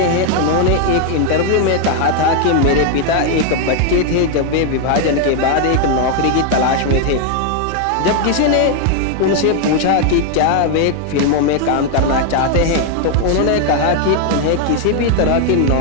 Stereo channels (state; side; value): different; both; correlation 0.00